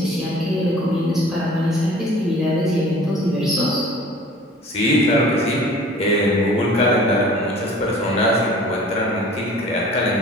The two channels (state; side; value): normal; both; correlation 0.47